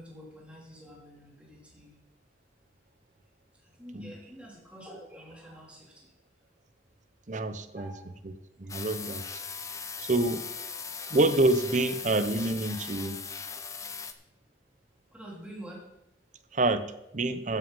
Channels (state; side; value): normal; both; correlation 0.31